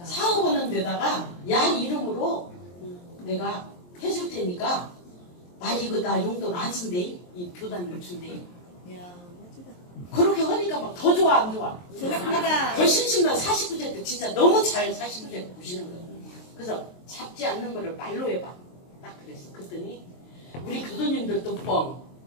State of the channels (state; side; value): late; right; 23 ms